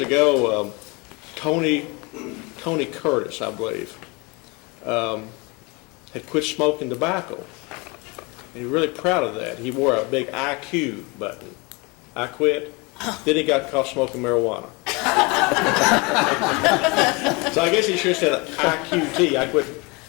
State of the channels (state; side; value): quieter; right; 27.7 dB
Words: ago, Tony Curtis, I believe, had quit smoking tobacco, and he was really proud of that. He wore a big IQ button. I quit. Then he got caught smoking marijuana. So I guess he should have said IQT. I quit